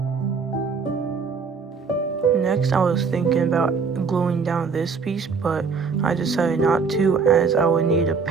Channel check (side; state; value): left; quieter; 5.2 dB